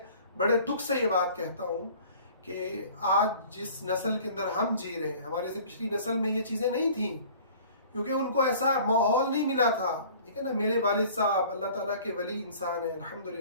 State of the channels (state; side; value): inverted; both; correlation -0.49